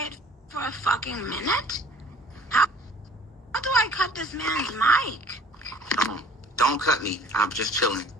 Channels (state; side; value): normal; both; correlation 0.52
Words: for a fucking minute? How do I cut this man's mic? Don't cut me. I'm just chilling.